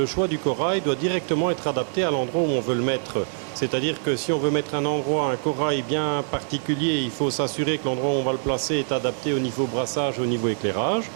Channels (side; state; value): left; silent; digital silence